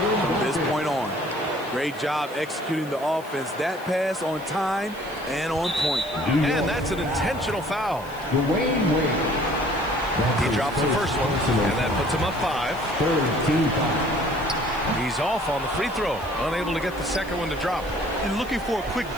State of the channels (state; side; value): noise; left; hiss, 21 dB below the sound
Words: this point on. Great job executing the offense. That pass on time and on point. And that's an intentional foul. Dwayne Wade. He drops the first one, and that puts him up 5. 13-5. He's off on the free throw, unable to get the second one to drop. And looking for a quick